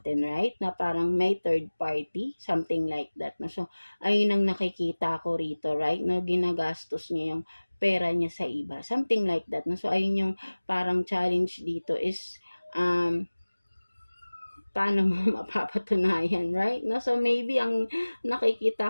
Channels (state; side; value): inverted; both; correlation -1.00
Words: right? Na parang may third party, something like that, no? So, ayun ang nakikita ko rito, right? No? Ginagastos niya yung pera niya sa iba, something like that, no? So, ayun yung parang challenge dito is paano mo mapapatunayan, right? No, so maybe ang nakikita